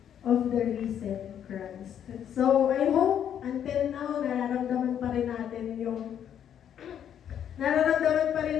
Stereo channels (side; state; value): right; quieter; 9.4 dB